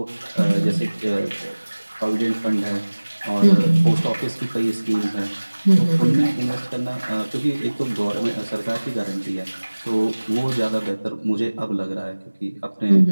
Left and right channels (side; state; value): both; inverted; correlation -1.00